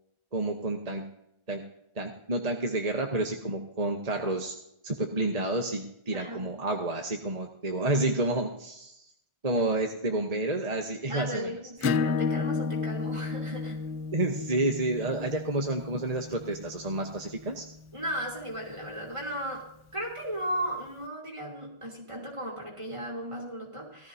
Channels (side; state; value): left; late; 1.4 ms